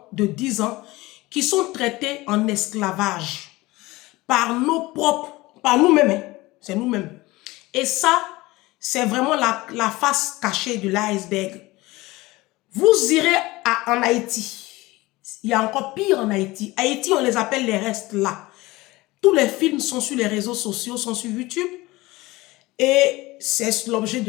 de 10 ans, qui sont traités en esclavage par nos propres, par nous-mêmes, hein. C'est nous-mêmes. Et ça, c'est vraiment la face cachée de l'iceberg. Vous irez en Haïti. Il y a encore pire en Haïti. Haïti, on les appelle les restes là. Tous les films sont sur les réseaux sociaux, sont sur YouTube. Et c'est l'objet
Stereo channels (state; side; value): quieter; right; 20.4 dB